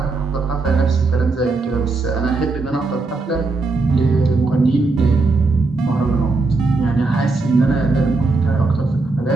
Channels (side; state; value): left; quieter; 3.7 dB